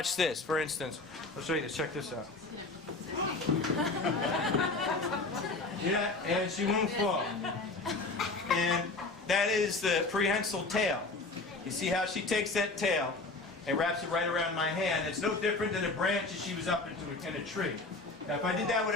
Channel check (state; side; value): quieter; right; 3.4 dB